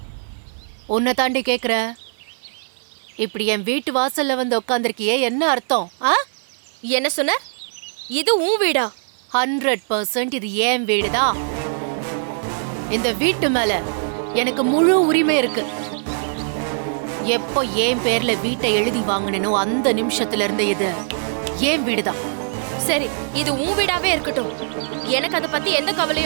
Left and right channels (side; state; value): left; silent; 65 dB below the other